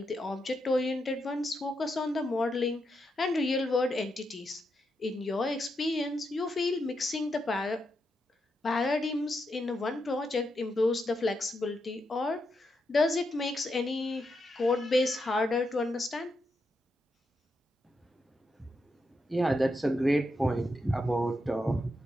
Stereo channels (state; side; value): normal; both; correlation 0.83